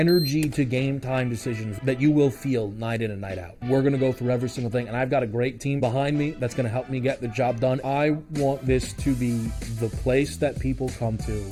to game time decisions that you will feel night in and night out. We're going to go through every single thing, and I've got a great team behind me that's going to help me get the job done. I want this to be the place that people come to.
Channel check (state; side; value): identical; both; correlation 1.00